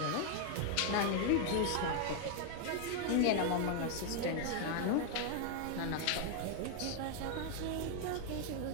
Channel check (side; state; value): both; different; correlation 0.00